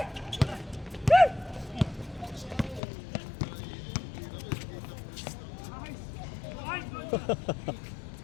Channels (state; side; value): drops out; right; at 2.8 s